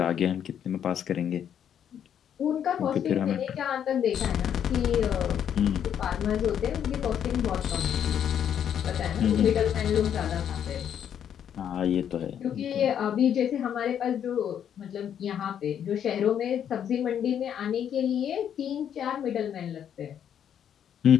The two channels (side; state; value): right; quieter; 9.1 dB